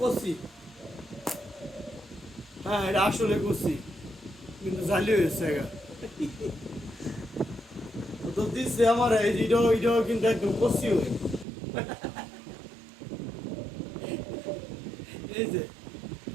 কষি। হ্যাঁ, এটা আসলে কষি, কিন্তু জালি হয়েছে গা। তো দিচ্ছে আমার এই যে এটাও কিন্তু একদম কষি হয়ে। এই যে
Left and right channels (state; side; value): drops out; left; at 11.5 s